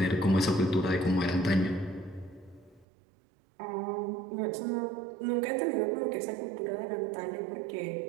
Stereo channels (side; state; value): left; drops out; at 2.9 s